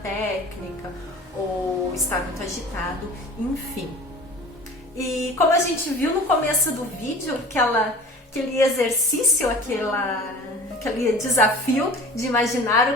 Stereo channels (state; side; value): normal; both; correlation 0.42